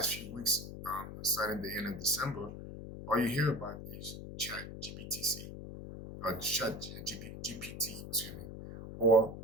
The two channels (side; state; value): left; noise; hum, 10 dB below the sound